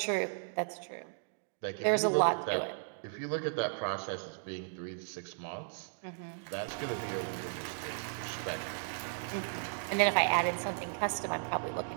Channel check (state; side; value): silent; left; digital silence